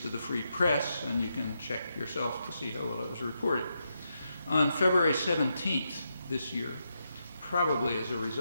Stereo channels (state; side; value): inverted; both; correlation -0.83